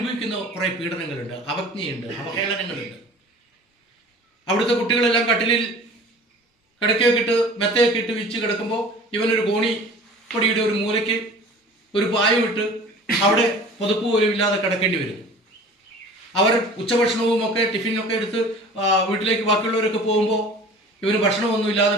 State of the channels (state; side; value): normal; both; correlation 0.43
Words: കുറേ പീഡനങ്ങളുണ്ട്, അവജ്ഞയുണ്ട്, അവഹേളനങ്ങളുണ്ട്. അവിടുത്തെ കുട്ടികളെല്ലാം കട്ടിലിൽ കിടക്കയൊക്കെ ഇട്ട് മെത്തയൊക്കെ ഇട്ട് വിരിച്ച് കിടക്കുമ്പോൾ ഇവനൊരു കോണിപ്പൊടിയുടെ ഒരു മൂലയ്ക്ക് ഒരു പായം ഇട്ട് അവിടെ പുതപ്പ് പോലും ഇല്ലാതെ കിടക്കേണ്ടി വരും. അവർ ഉച്ചഭക്ഷണവും ഒക്കെ ടിഫിനൊക്കെ എടുത്ത് വീട്ടിലേക്ക് ബാക്കിയുള്ളവരൊക്കെ പോകുമ്പോൾ ഇവന് ഭക്ഷണമൊന്നുമില്ലാതെ